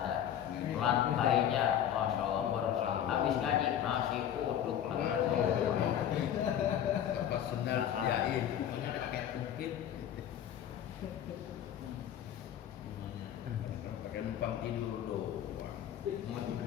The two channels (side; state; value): right; quieter; 10.1 dB